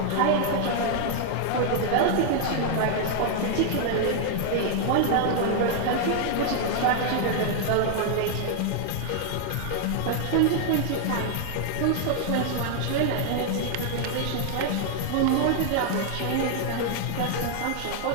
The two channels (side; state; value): both; different; correlation 0.00